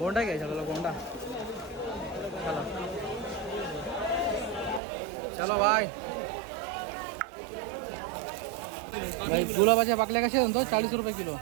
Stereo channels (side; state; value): left; drops out; at 4.8 s